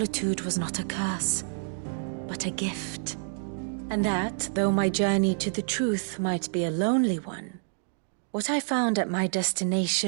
was not a curse, but a gift. And that, though my journey to the truth might be a lonely one, what I found at my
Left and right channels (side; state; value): left; silent; digital silence